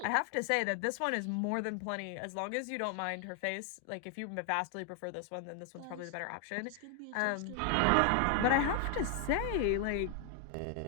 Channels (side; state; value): both; different; correlation 0.00